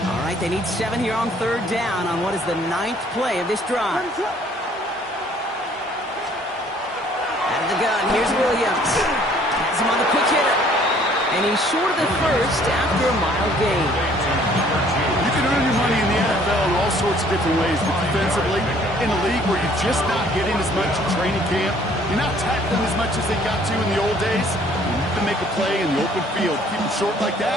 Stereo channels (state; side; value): normal; both; correlation 0.59